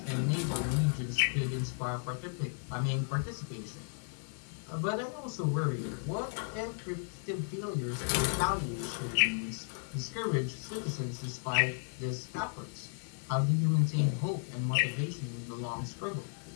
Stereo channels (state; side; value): silent; right; 55 dB below the other